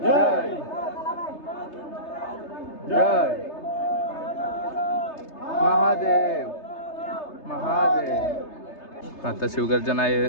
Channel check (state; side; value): late; right; 3.3 ms